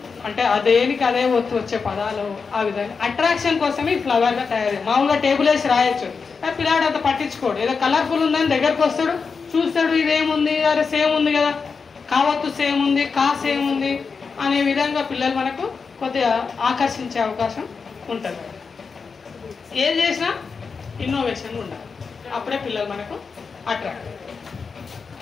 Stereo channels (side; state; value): right; quieter; 5.2 dB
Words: అంటే అదేనికి అదే ఒత్తు వచ్చే పదాలు. ఆ విధంగా అట్రాక్షన్ కోసమే ఈ ఫ్లవర్గా తయారు. మామూలుగా టేబుల్ వేసి రాయొచ్చు, పిల్లాడు అంత పట్టించుకోడు. ఏదో కలర్ఫుల్ ఉందని దగ్గరకు వస్తాడు, చూస్తాడు, ఇదేముంది, అరే సేమ్ ఉంది కదా, కావత్తు సేమ్ ఉంది, కా సేమ్ ఉంది అనే విధంగా పిల్లలు మనకు కొద్దిగా ఆకర్షించే అవకాశం ఉంటుంది. ఏం చేసినా ఇన్నోవేషన్ ఉండాలి, అప్పుడే పిల్లలు మనకు అట్రాక్ట్.